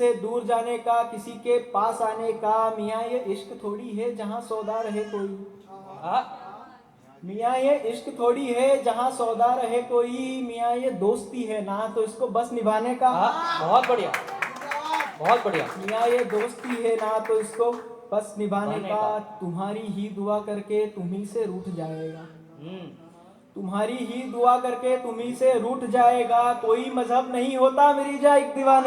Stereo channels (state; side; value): identical; both; correlation 1.00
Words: दूर जाने का किसी के पास आने का। मियाँ ये इश्क थोड़ी है जहाँ सौदा रहे कोई, आहा, मियाँ ये इश्क थोड़ी है जहाँ सौदा रहे कोई, मियाँ ये दोस्ती है ना तो इसको बस निभाने का। आहा, बहुत बढ़िया, बहुत बढ़िया। मियाँ ये दोस्ती है ना तो इसको बस निभाने निभाने का। का। तुम्हारी ही दुआ करके तुम्ही से रूठ जाएगा, हम्म, तुम्हारी ही दुआ करके तुम्ही से रूठ जाएगा, कोई मजहब नहीं होता मिर्जा एक